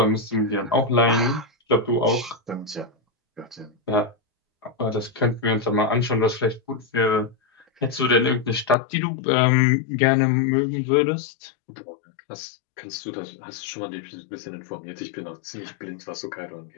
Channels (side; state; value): right; drops out; at 8.8 s